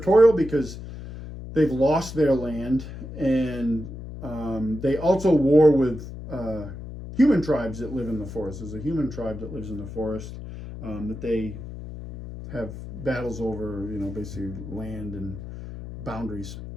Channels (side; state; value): left; noise; hum, 11 dB below the sound